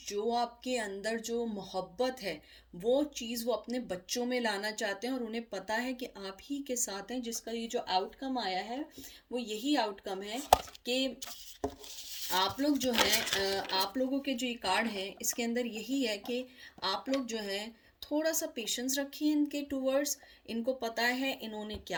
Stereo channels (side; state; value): both; identical; correlation 1.00